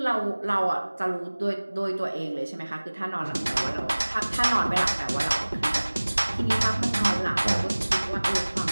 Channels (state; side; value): inverted; both; correlation -1.00